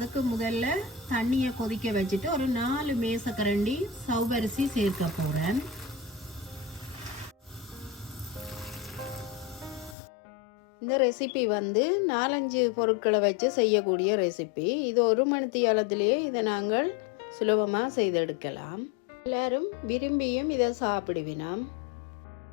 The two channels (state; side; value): drops out; right; at 10.0 s